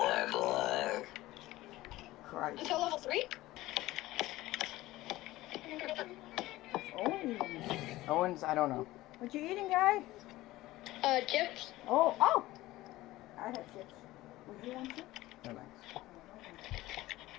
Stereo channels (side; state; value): right; quieter; 17.4 dB